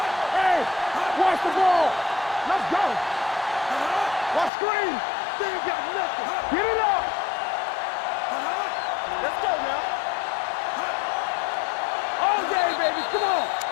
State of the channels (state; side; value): drops out; right; at 4.5 s